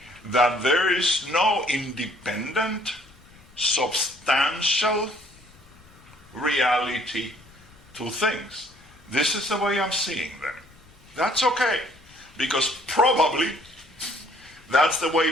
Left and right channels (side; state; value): left; noise; rumble, 27 dB below the sound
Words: That there is no independent, substantial reality to things. This is the way I'm seeing them. That's okay, because probably that's the way